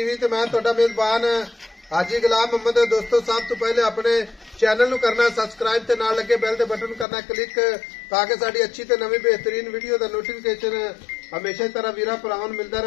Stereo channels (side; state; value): right; drops out; at 7.1 s